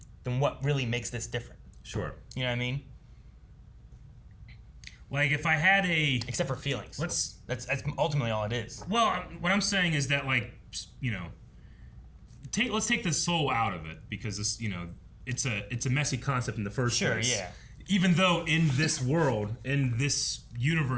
then what really makes this different? Sure. You know what I mean? Like, if I had except for feelings. That's ultimately all it is. Well, what I'm saying is that, like, you know, let's take the soul out of it, because this, you know, it's a messy concept in the first place. Sure, yeah. Even though in this world, in this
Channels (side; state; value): both; identical; correlation 1.00